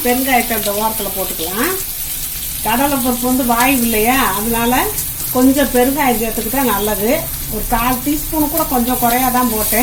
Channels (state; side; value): identical; both; correlation 1.00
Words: பெருங்காயத்தை அந்த ஓரத்துல போட்டுக்கலாம். கடலை பருப்பு வாய்வு இல்லையா, அதனால கொஞ்சம் பெருங்காயம் சேர்த்துக்கிட்டா நல்லது. ஒரு 1/4 டீஸ்பூன் கூட கொஞ்சம் குறையாதான்